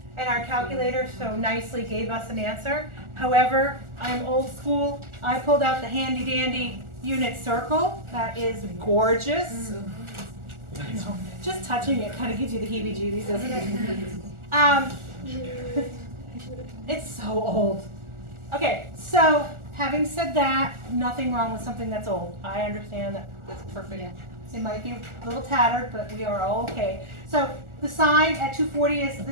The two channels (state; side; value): late; left; 1.4 ms